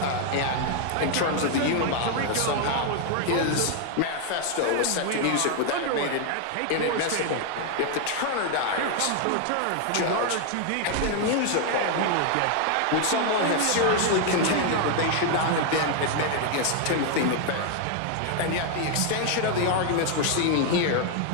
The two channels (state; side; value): different; both; correlation 0.00